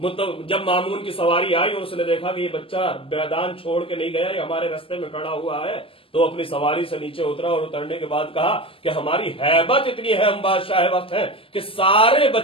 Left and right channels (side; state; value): right; late; 0.26 ms